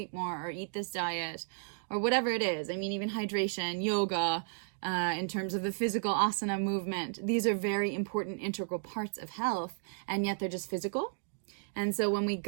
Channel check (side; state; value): left; silent; digital silence